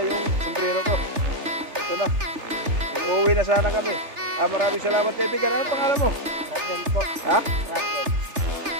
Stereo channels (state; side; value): late; left; 3.4 ms